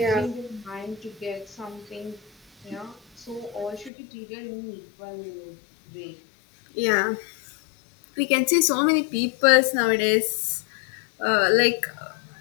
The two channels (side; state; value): right; drops out; at 3.9 s